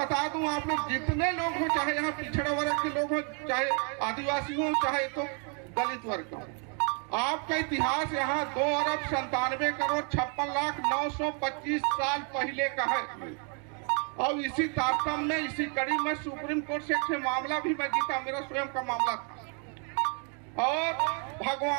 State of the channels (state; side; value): quieter; left; 39.0 dB